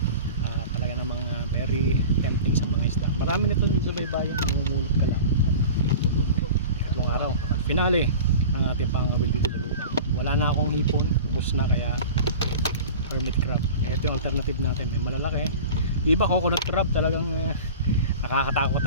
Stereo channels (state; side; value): inverted; both; correlation -0.36